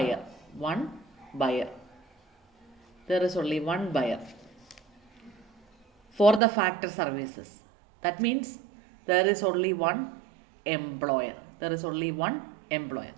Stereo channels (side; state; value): left; drops out; at 6.4 s